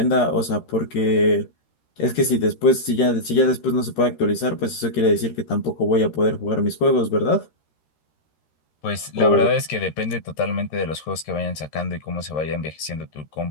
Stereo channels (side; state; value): right; late; 13 ms